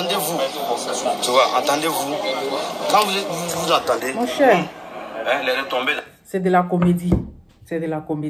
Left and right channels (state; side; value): identical; both; correlation 1.00